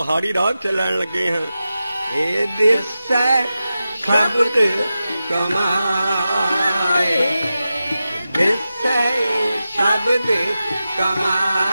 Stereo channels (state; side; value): inverted; both; correlation -0.92